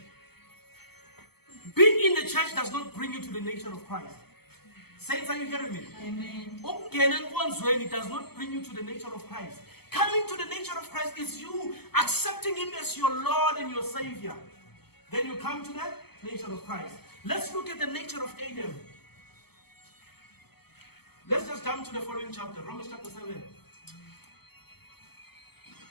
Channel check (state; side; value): late; right; 0.96 ms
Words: Being in the church does not bring you to the nature of Christ. Saints, are you hearing me? Amen. It does not bring you to the nature of Christ. Coming to the nature of Christ is you accepting Him as your Lord and your Savior. Then you come to the nature of Christ. Let's look at the nature of Adam. Let's just jump to the following chapter, Romans chapter 7.